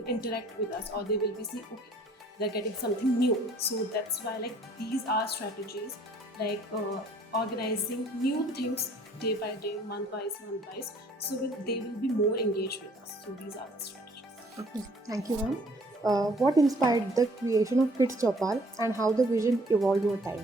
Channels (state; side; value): normal; both; correlation 0.58